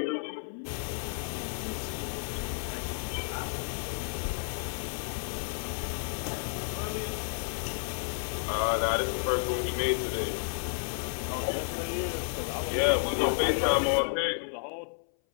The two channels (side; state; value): right; silent; 57 dB below the other